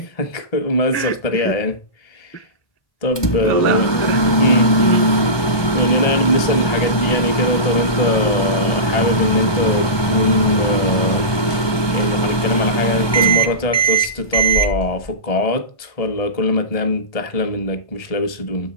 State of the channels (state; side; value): late; right; 1.2 ms